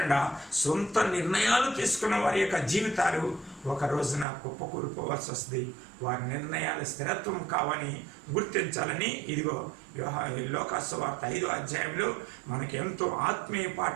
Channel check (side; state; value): left; drops out; at 4.2 s